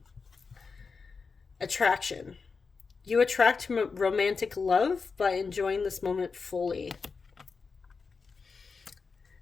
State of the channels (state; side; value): quieter; right; 4.9 dB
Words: Attraction. You attract romantic love by enjoying this moment fully.